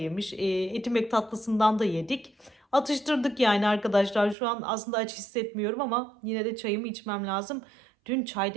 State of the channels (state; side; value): drops out; left; at 4.4 s